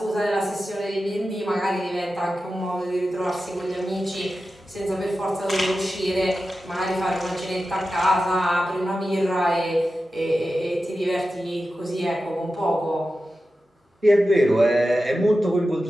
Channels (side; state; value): both; normal; correlation 0.92